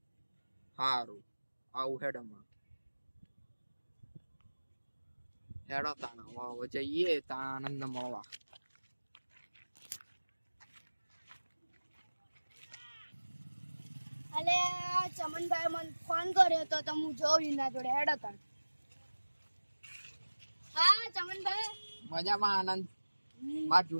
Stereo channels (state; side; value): inverted; both; correlation -1.00